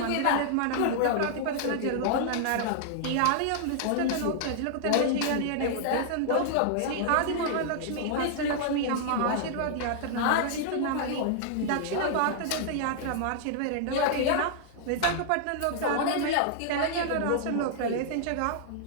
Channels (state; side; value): different; both; correlation -0.01